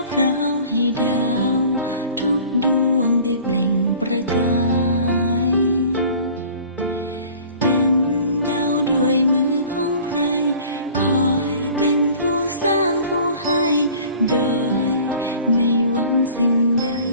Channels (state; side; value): inverted; both; correlation -0.47